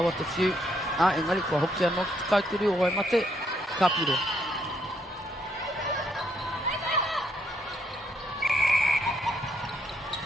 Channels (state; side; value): normal; both; correlation 0.73